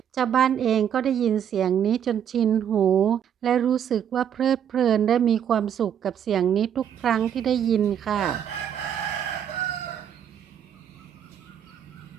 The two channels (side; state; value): left; quieter; 9.0 dB